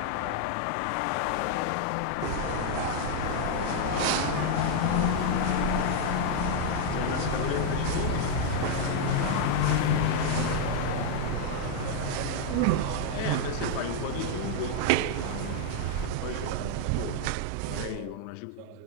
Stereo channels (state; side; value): different; both; correlation 0.00